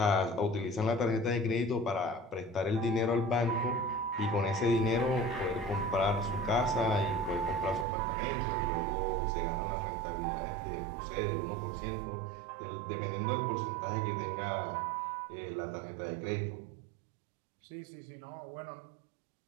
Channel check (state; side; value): drops out; left; at 7.9 s